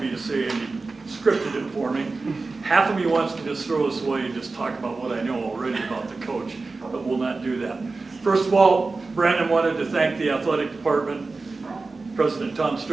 to say, and he scripted it for me. Half of me wants to just throw this away and just talk about what I know already about the coach, but we'll not do that. First of all, Brandon wanted to thank the athletic department, President Tom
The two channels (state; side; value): quieter; left; 3.8 dB